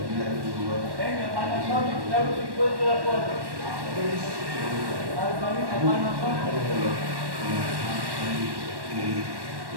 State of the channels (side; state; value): left; late; 1.1 ms